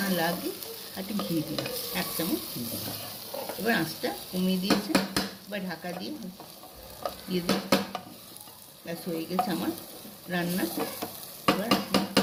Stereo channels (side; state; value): both; identical; correlation 1.00